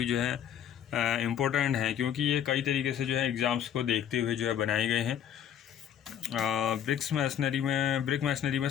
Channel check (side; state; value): right; quieter; 9.6 dB